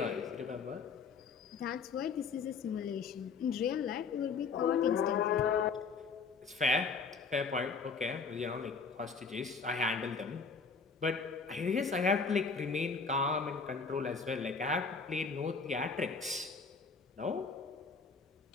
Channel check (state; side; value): quieter; right; 5.1 dB